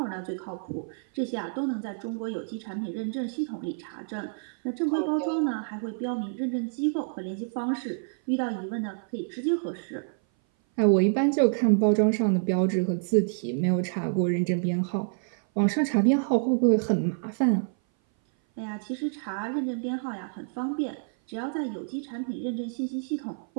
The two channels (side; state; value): left; silent; 57 dB below the other